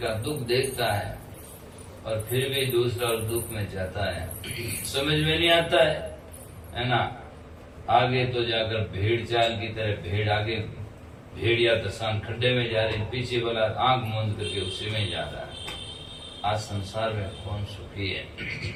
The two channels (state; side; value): identical; both; correlation 1.00